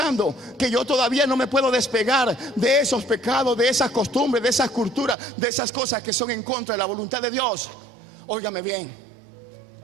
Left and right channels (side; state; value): left; drops out; at 5.2 s